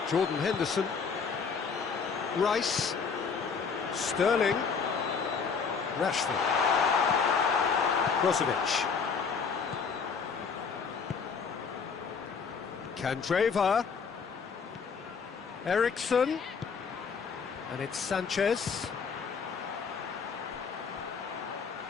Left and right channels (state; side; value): quieter; right; 5.7 dB